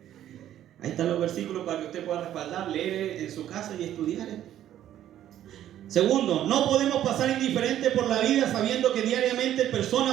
Ahí están los versículos para que usted pueda respaldar, leer en su casa y estudiar. Segundo, no podemos pasar indiferente por la vida sabiendo que diariamente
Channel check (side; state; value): left; quieter; 11.7 dB